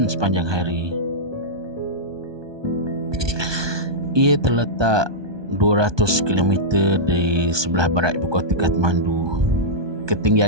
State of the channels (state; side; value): late; left; 1.2 ms